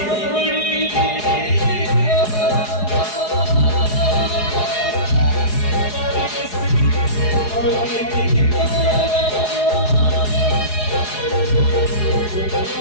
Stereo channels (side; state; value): right; late; 4.8 ms